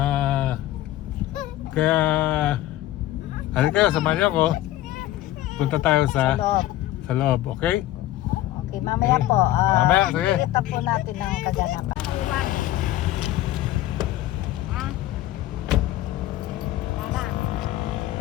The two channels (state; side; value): quieter; right; 14.7 dB